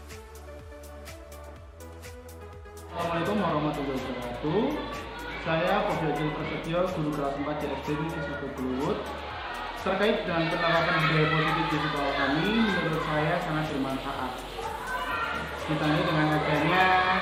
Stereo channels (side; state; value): both; identical; correlation 1.00